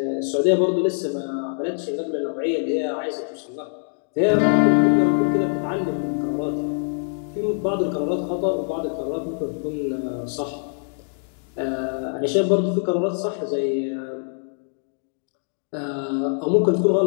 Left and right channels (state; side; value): silent; right; digital silence